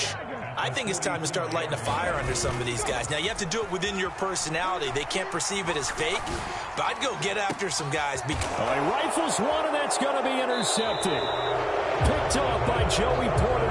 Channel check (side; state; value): both; identical; correlation 1.00